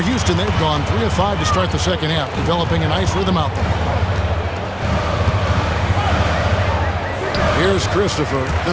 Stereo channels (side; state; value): both; identical; correlation 1.00